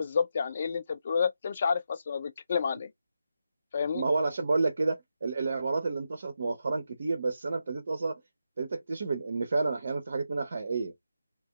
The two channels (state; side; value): inverted; both; correlation -0.85